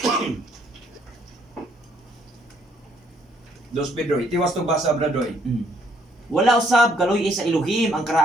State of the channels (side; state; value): both; normal; correlation 0.67